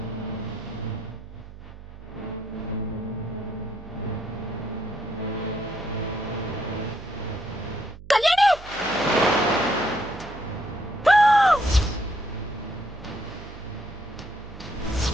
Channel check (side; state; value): right; noise; hum, 16 dB below the sound